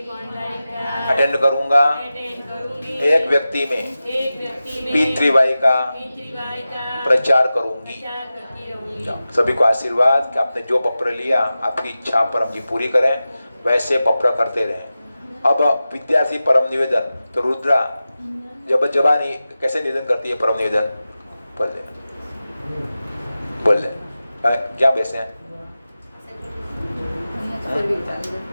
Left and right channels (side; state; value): both; inverted; correlation -0.94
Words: अटेंड करूंगा। एक व्यक्ति में पितृवाई का प्रचार करूंगी। सभी को आशीर्वाद कि आपने जो पत्र लिया आपकी इच्छा परम जी पूरी करें, वैसे पत्र करते रहें। अब विद्यार्थी परम निवेदन तो रुद्रा जब जबानी कैसे निवेदन करती है परम निवेदन? बोल ले क्या बैसे हैं? फिर भी चलेगा।